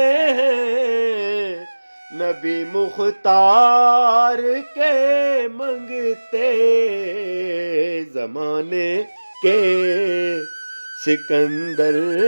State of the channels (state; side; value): inverted; both; correlation -1.00